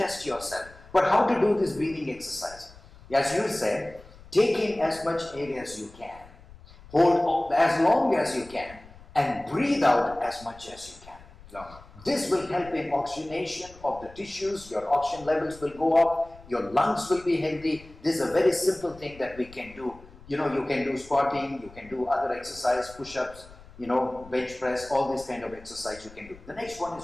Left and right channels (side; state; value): left; noise; rumble, 21 dB below the sound